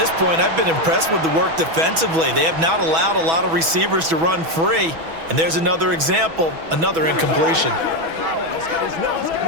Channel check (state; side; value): late; left; 6.1 ms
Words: point, I've been impressed with the work defensively. They have not allowed a lot of receivers to run free. And there's another example, another incompletion.